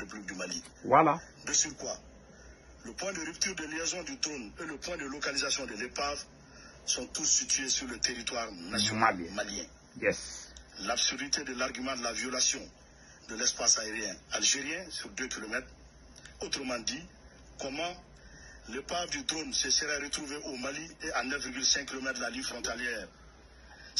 du Mali. Voilà. De surcroît, le point de rupture de liaison du drone et le point de localisation de l'épave sont tous situés sur le territoire national malien. Yes. L'absurdité de l'argument de la violation de l'espace aérien algérien sur 2 km, autrement dit, comment l'épave du drone se serait retrouvée au Mali et à 9,5 km de la ligne frontalière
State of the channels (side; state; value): both; identical; correlation 1.00